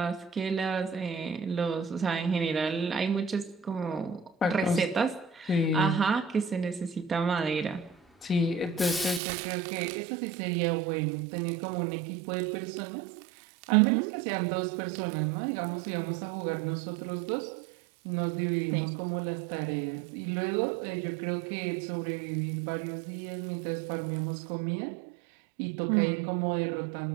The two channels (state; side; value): drops out; left; at 9.2 s